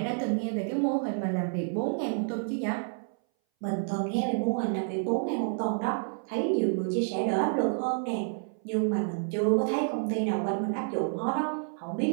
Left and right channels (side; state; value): left; silent; 58 dB below the other